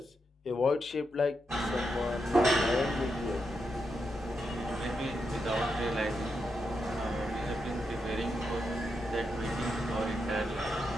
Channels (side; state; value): both; normal; correlation 0.84